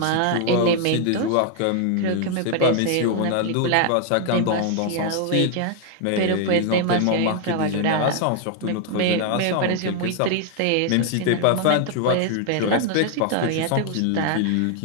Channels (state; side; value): different; both; correlation 0.00